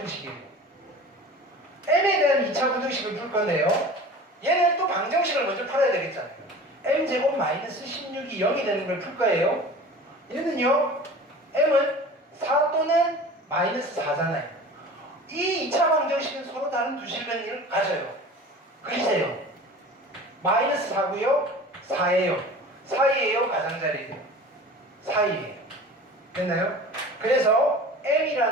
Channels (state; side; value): normal; both; correlation 0.39